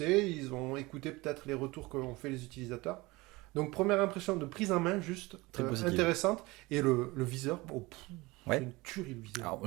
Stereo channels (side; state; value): left; quieter; 22.2 dB